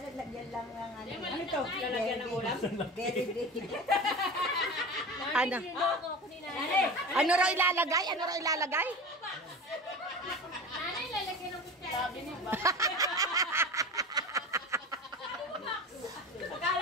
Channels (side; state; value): both; normal; correlation 0.31